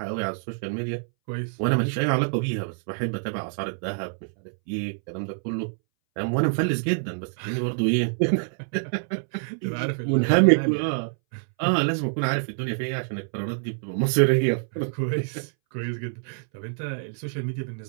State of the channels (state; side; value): silent; left; 61 dB below the other